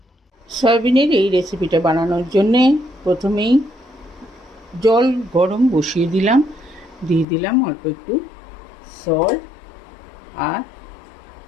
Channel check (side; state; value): right; drops out; at 7.2 s